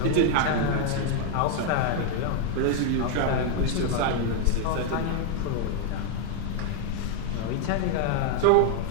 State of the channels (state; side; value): different; both; correlation 0.00